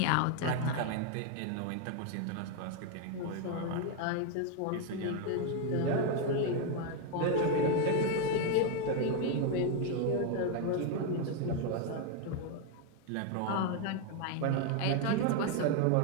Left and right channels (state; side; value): different; both; correlation 0.01